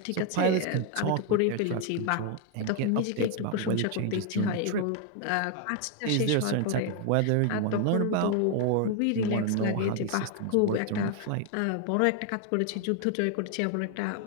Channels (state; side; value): different; both; correlation 0.01